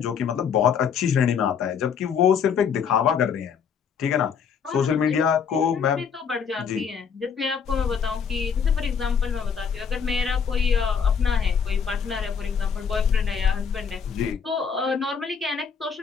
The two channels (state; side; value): quieter; right; 6.8 dB